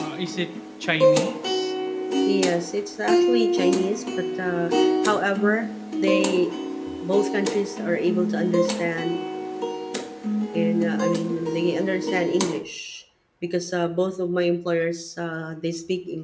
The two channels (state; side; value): identical; both; correlation 1.00